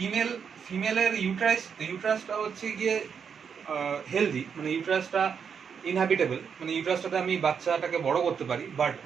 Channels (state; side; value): quieter; left; 6.8 dB